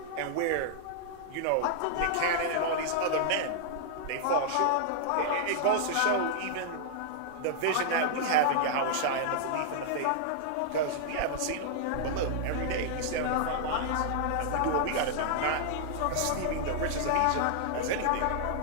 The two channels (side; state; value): both; different; correlation -0.01